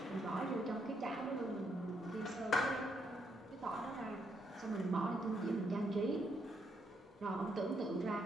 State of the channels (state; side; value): normal; both; correlation 0.76